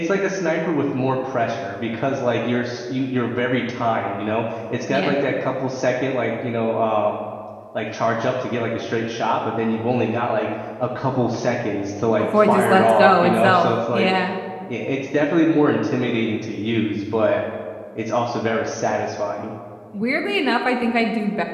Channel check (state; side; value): identical; both; correlation 1.00